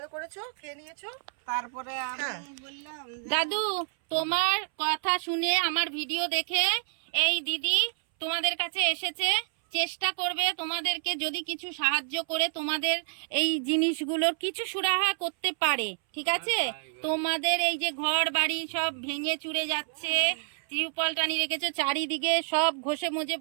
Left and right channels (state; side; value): silent; left; 59 dB below the other